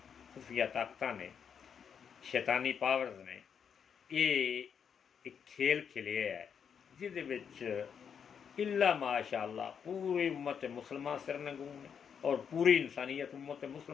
खुफिया ताकत ने, शैतानी पावर्स ने ये एक खेल खेलिया है जिहदे विच इल्ला माशाअल्लाह पूरी उम्मत मुसलमान सिरनगून है। और पूरी इंसानियत उम्मत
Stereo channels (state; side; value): quieter; right; 7.3 dB